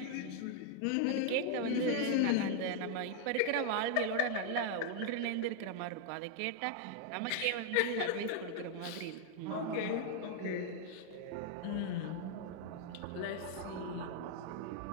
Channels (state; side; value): different; both; correlation 0.00